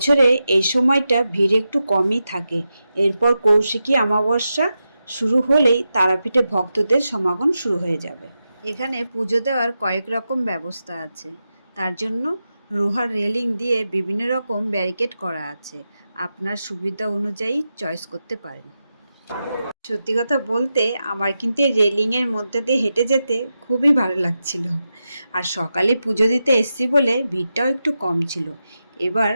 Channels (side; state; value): both; inverted; correlation -0.90